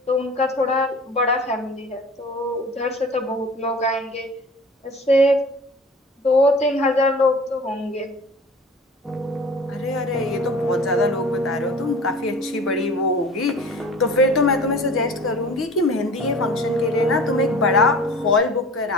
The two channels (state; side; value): normal; both; correlation 0.42